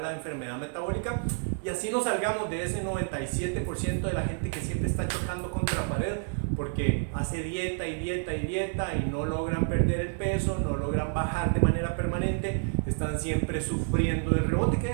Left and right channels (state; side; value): silent; left; 58 dB below the other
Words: la enfermedad metabólica, y así nos salgamos de ese 97% de la gente que siempre está chocando contra la pared porque hace dieta y dieta y dieta y no logran perder el peso, no logran bajar de manera permanente, están siempre sufriendo del rebote, que